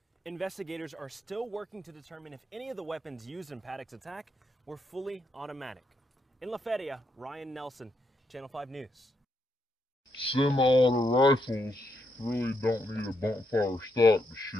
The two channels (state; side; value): normal; both; correlation 0.79